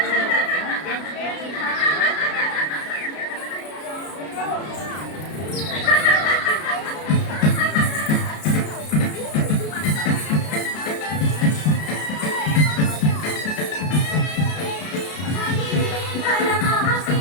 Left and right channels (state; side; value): late; right; 33 ms